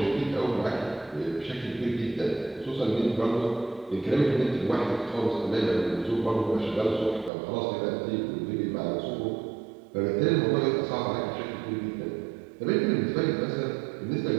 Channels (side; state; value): left; drops out; at 7.3 s